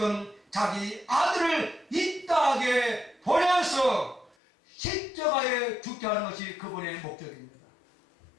자기 아들을 이 땅에 보내서 십자가에 죽게 하는 것이 그분의 목적입니다.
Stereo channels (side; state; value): right; drops out; at 4.4 s